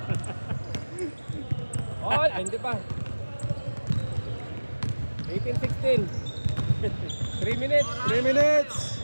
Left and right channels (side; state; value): both; inverted; correlation -1.00